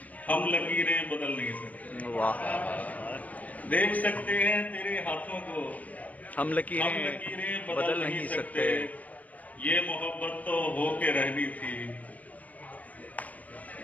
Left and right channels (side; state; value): right; late; 0.075 ms